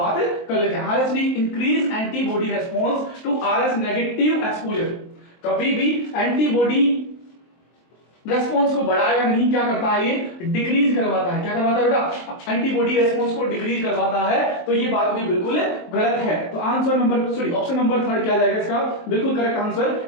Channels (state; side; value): late; right; 23 ms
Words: कर लेते हैं। RSD increase antibody response to Rh negative exposure. कभी भी एंटीबॉडी रेस्पॉन्स को बढ़ाएगा नहीं, क्या करता है, ये डिक्रीज करवाता है। क्या करवाता है बेटा, एंटीबॉडी रेस्पॉन्स को डिक्रीज करवाता है। तो ये बात भी बिल्कुल गलत है। तो answer number sorry option number 3 क्या जाएगा इसका, बिल्कुल करेक्ट आंसर,